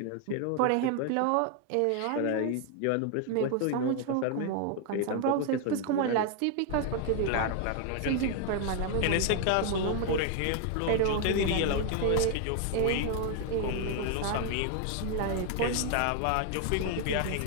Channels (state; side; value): different; both; correlation 0.00